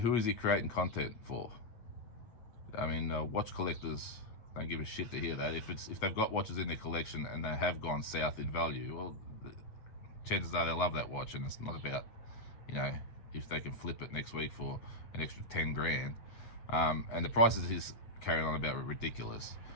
is he creating content for? I mean, watch collectors don't give a shit to hear that. If they've got watches in their collection and they have gone south in value, well, chances are they love that watch, and it's not about, you know, if they can flip it next week for an extra 10 grand. And the prices he's carrying on about are ridiculous.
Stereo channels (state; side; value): late; right; 8.4 ms